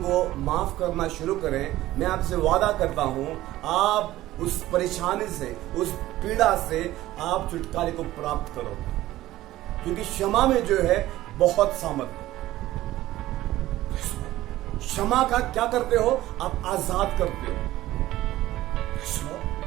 माफ करना शुरू करें। मैं आपसे वादा करता हूं, आप उस परेशानी से, उस पीड़ा से आप छुटकारे को प्राप्त करोगे, क्योंकि क्षमा में जो है बहुत सामर्थ्य। क्षमा का क्या करते हो? आप आजाद करते हो।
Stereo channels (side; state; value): left; quieter; 15.7 dB